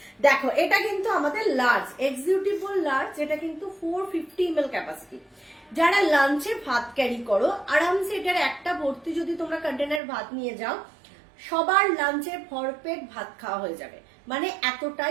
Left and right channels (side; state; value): left; drops out; at 10.0 s